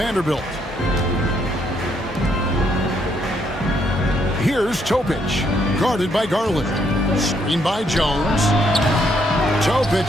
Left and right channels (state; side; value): normal; both; correlation 0.72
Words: Here's Topic, guarded by Garland. Screen by Jones. Topic,